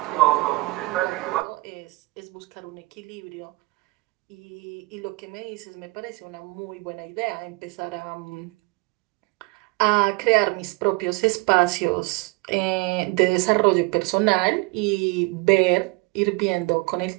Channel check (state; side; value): quieter; left; 24.7 dB